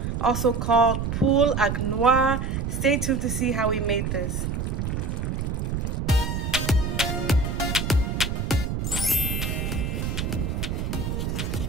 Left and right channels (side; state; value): right; noise; rumble, 2 dB below the sound